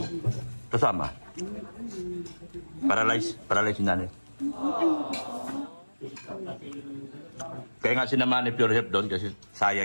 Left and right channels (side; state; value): both; inverted; correlation -1.00